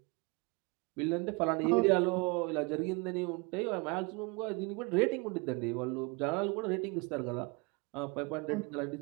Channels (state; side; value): quieter; left; 29.1 dB